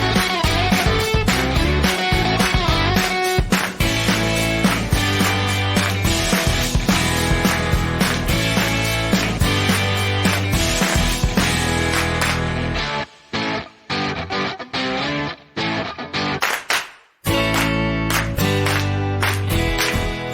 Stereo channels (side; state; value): both; identical; correlation 1.00